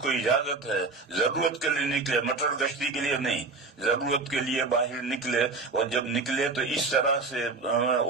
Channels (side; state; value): left; quieter; 3.9 dB